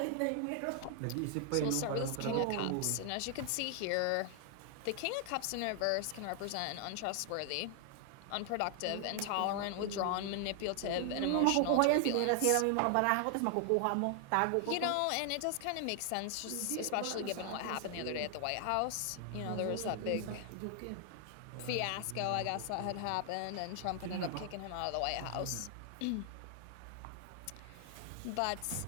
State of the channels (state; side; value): different; both; correlation 0.00